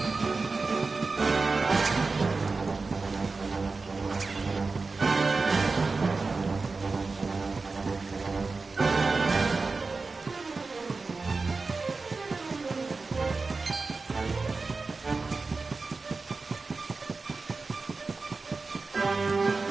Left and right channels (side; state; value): left; quieter; 4.0 dB